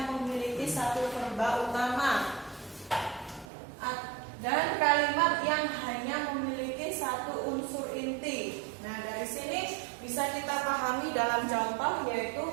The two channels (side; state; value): left; drops out; at 3.5 s